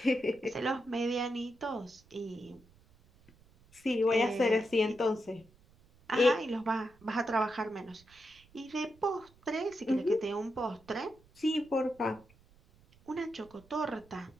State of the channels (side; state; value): right; noise; rumble, 28 dB below the sound